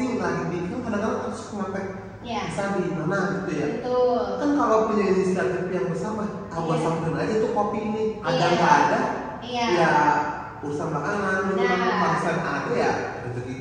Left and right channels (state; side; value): identical; both; correlation 1.00